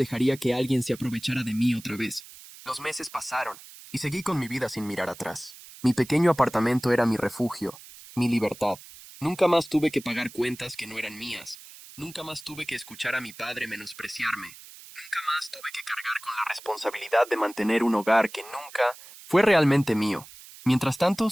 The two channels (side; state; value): right; noise; hiss, 18 dB below the sound